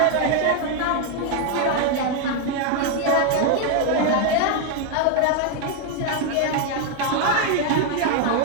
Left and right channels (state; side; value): different; both; correlation 0.01